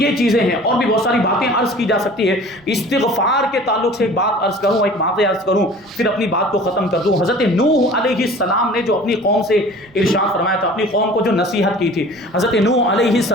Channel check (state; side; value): noise; right; rumble, 30 dB below the sound